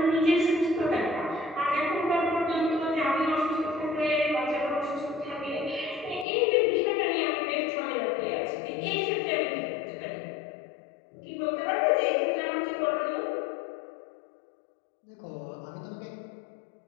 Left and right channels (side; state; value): right; drops out; at 6.2 s